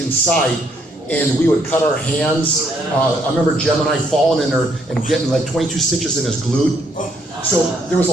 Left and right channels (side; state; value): both; normal; correlation 0.70